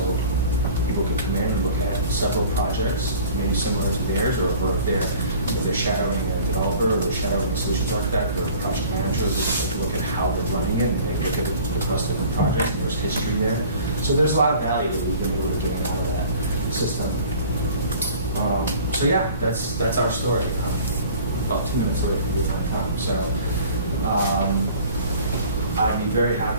people can come in and look at several projects, maybe similar to theirs, or if they're shadowing a developer, or they're shadowing a solutions architect, or a project manager, they look at how they're running it, and they look at it across different projects, and there's history there. So there's a lot of value that we've been able to gain out of that system. So yeah, that's our story. About 2 minutes away with my time. So I'd be very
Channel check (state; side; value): inverted; both; correlation -0.47